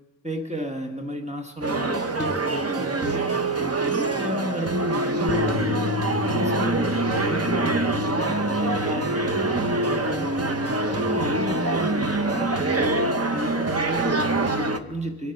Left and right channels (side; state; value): both; normal; correlation 0.12